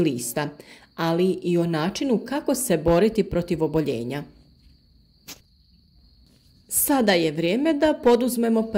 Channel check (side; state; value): both; identical; correlation 1.00